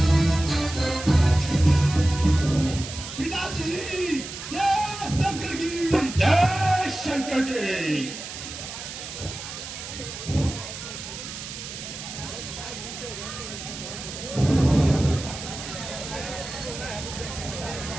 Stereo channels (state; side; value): noise; right; hiss, 10 dB below the sound